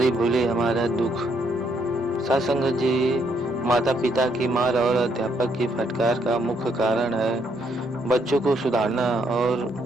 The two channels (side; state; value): both; normal; correlation 0.72